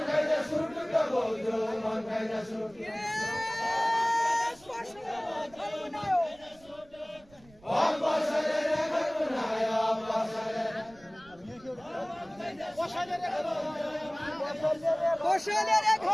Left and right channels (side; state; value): right; noise; rumble, 26 dB below the sound